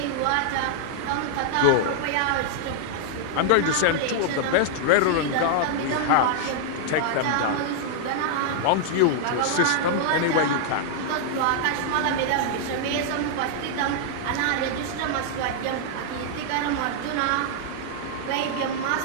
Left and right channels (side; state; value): both; different; correlation -0.01